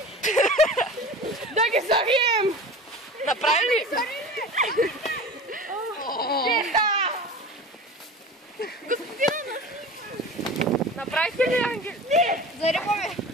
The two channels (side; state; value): both; normal; correlation 0.35